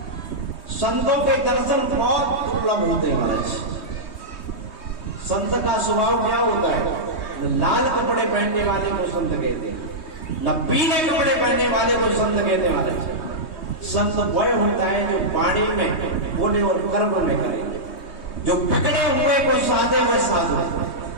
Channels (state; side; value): late; right; 3.2 ms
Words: संतों के दर्शन बहुत दुर्लभ होते हैं महाराज। संत का स्वभाव क्या होता है? न लाल कपड़े पहनने वाले को संत कहते हैं, न पीले कपड़े पहनने वाले को संत कहते हैं महाराज। संत वह होता है जो वाणी में, बोले और कर्म में करे, जो बिगड़े हुए को साधे वह साधु,